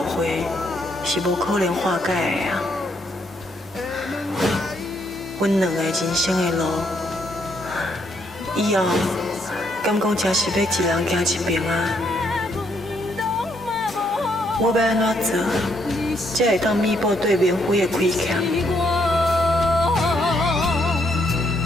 会是无可能化解的啊！阮两个人生的路，以后敢讲真是要一人行一边啊？我要安怎做，才会当弥补对免费的亏欠？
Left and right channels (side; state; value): both; normal; correlation 0.73